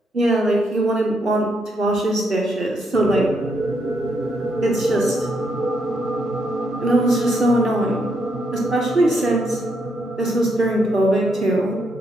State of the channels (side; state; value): both; normal; correlation 0.77